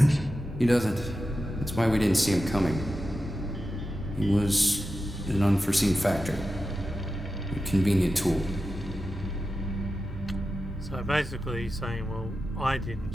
He doesn't. That's why we didn't see him coming. He was an unforeseen factor. A convenient tool. So basically he's saying, well, I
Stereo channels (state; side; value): normal; both; correlation 0.91